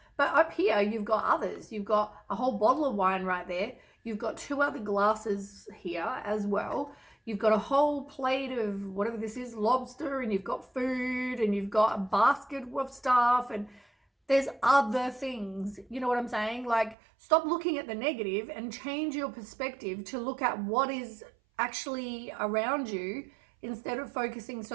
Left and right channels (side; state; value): left; drops out; at 16.9 s